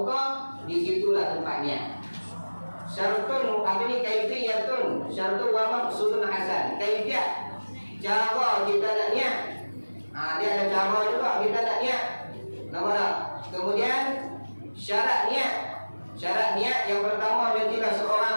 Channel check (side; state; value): both; inverted; correlation -1.00